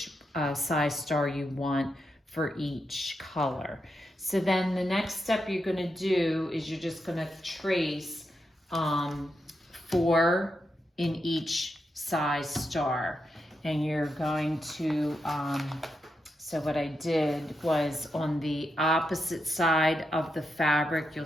size star you want for each color. So then the next step you're going to do is you're just going to trace 4 in each size star, and you're going to so what I did was on the opposite side of the fabric, you'll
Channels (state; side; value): normal; both; correlation 0.85